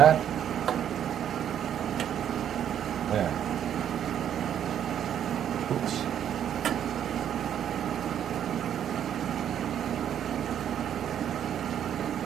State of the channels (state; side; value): quieter; left; 9.7 dB